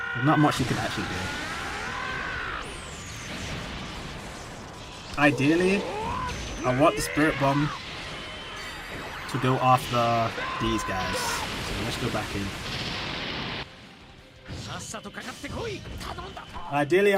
not much you can actually do. Ideally, I want the Spirit Bomb to go after these guys. So let's go back in. Ideally,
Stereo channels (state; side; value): identical; both; correlation 1.00